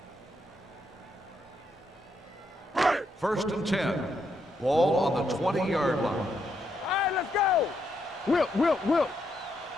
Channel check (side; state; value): both; normal; correlation 0.79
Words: First and 10. Ball on the 20-yard line. All right, let's go. Wilt.